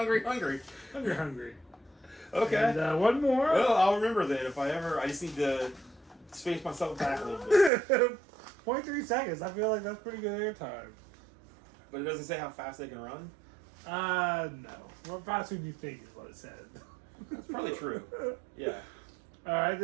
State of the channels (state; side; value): drops out; left; at 7.7 s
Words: Hungry. Okay. And one more. Well, I'll remember that if I ever. I just need to space myself back a little bit. 0.3 seconds. I feel like that's pretty good airtime. But it doesn't say how fast they can run. No. What faster do you think is what it said? That's probably true. Yeah. All right.